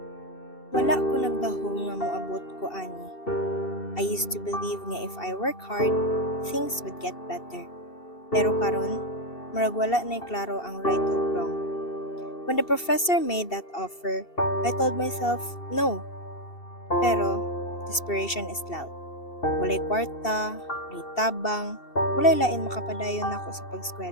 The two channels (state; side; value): late; right; 2.7 ms